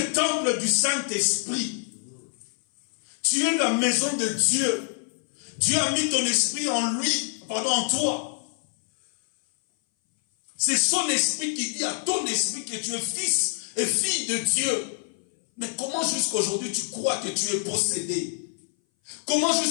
temple du Saint-Esprit. Tu es la maison de Dieu. Dieu a mis ton esprit en lui, en toi. C'est son esprit qui dit à ton esprit que tu es fils et fille de Dieu. Mais comment jusqu'à aujourd'hui tu crois que tu es possédé? Comment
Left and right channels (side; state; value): right; silent; 58 dB below the other